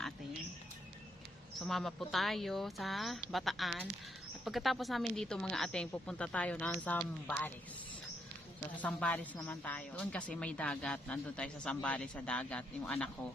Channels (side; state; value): both; normal; correlation 0.77